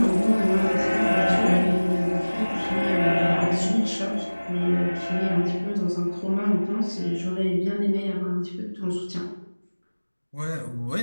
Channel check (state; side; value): inverted; both; correlation -1.00